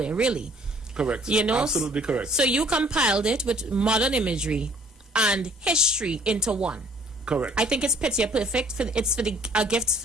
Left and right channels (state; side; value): normal; both; correlation 0.57